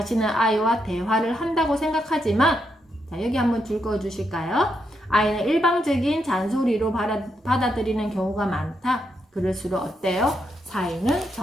아이와 대화를 한다고 생각하지만, 자, 여기 한번 줄 그어 주실까요? 아이는 일방적인 잔소리로 받아들이는 경우가 많다. 그럴수록 어때요? 사이는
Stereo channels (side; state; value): both; normal; correlation 0.81